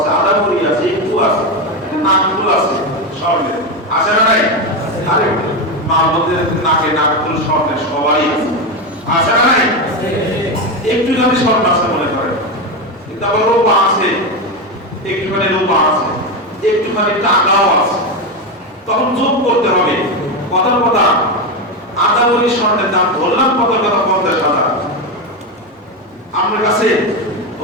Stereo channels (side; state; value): both; normal; correlation 0.13